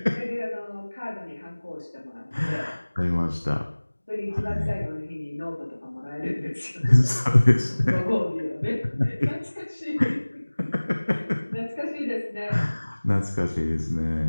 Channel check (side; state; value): both; inverted; correlation -1.00